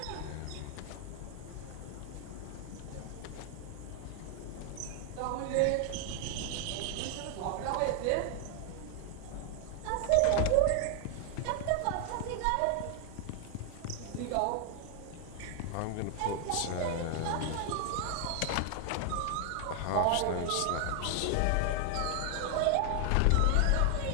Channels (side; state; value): both; different; correlation 0.00